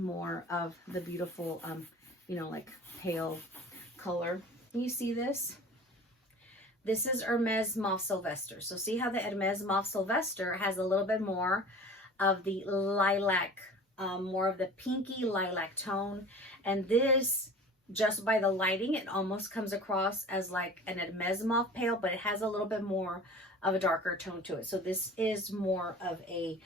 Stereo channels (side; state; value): both; normal; correlation 0.41